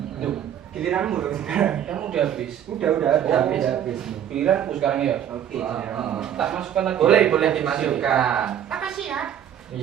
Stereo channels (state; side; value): quieter; left; 9.9 dB